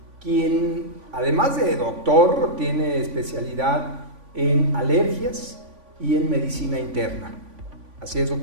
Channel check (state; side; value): late; left; 3.5 ms